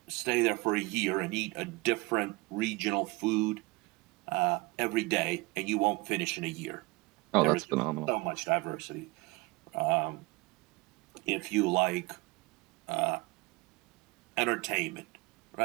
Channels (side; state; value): left; quieter; 23.8 dB